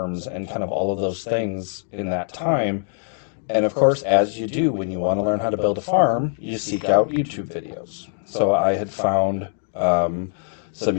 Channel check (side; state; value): right; silent; 61 dB below the other